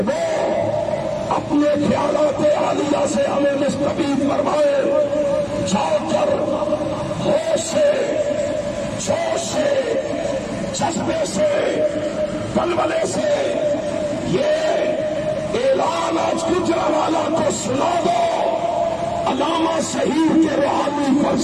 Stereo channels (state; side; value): identical; both; correlation 1.00